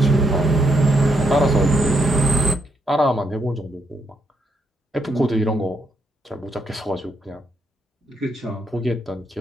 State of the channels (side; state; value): both; normal; correlation 0.76